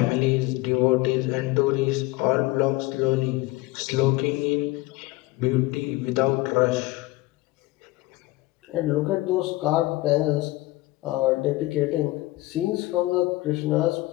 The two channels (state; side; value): quieter; right; 19.8 dB